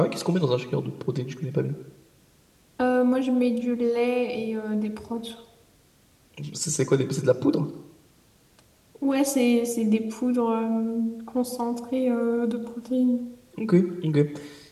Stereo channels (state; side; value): identical; both; correlation 1.00